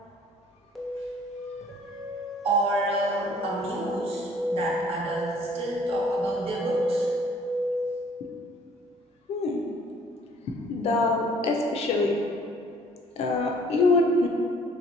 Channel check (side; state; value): both; normal; correlation 0.57